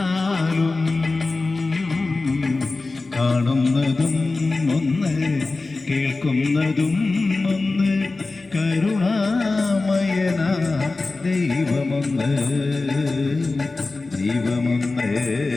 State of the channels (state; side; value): quieter; right; 3.5 dB